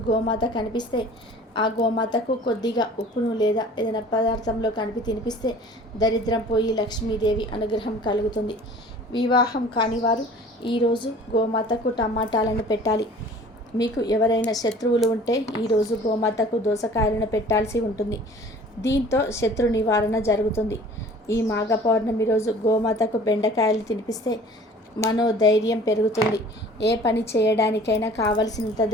గోమాత కనిపిస్తే ఆ గోమాతకు కొద్దిగా ఉప్పును లేదా ఏదైనా పదార్థంలో కలిపి తినిపిస్తే దరిద్రం పోయి లక్ష్మీదేవి అనుగ్రహం కలుగుతుంది. వివాహం కాని వారు ఈరోజు గోమాతకు టమాటాలను పెట్టాలి. మీకు ఎవరైనా శత్రువులు ఉంటే ఈరోజు గోమాతకు దోసకాయలను పెట్టాల్సి ఉంటుంది. దీంతో శత్రు నివారణ జరుగుతుంది. ఈ మాఘ పౌర్ణమి రోజు గోమాతకు బెండకాయలు తినిపిస్తే మనోధైర్యం పెరుగుతుంది. ఏ పని చేయడానికైనా కావలసినంత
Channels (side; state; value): both; normal; correlation 0.47